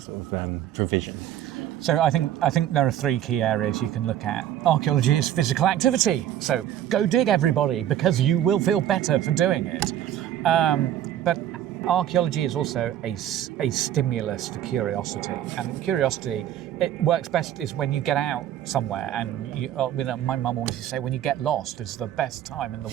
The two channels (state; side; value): quieter; left; 11.4 dB